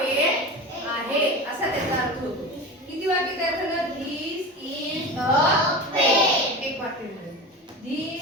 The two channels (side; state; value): both; normal; correlation 0.29